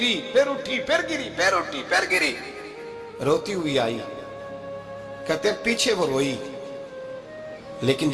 پھر اٹھی، پھر گری، پھر اٹھی، پھر گری، روتی ہوئی آئی۔ کہتے ہیں پیچھے وہ روئی، لیکن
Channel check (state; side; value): identical; both; correlation 1.00